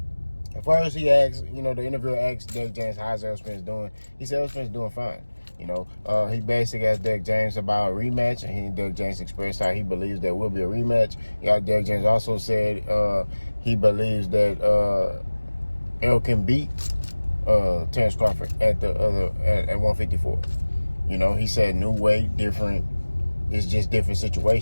at first he asked, you know, the interviewer asked Derrick James, how's Errol Spence doing? He said Errol Spence doing fine. You know, he basically asked Derrick James about a rematch, and Derrick James expressed how he believes there will be a rematch. Derrick James also said he believes that Errol can beat Terrence Crawford at 154. You know, he said new weight, different. It's just different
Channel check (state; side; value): inverted; both; correlation -1.00